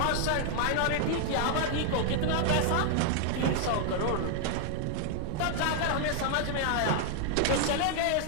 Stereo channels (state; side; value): different; both; correlation 0.00